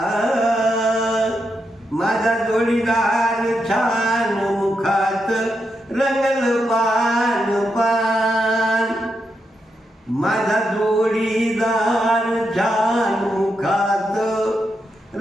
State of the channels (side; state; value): both; normal; correlation 0.84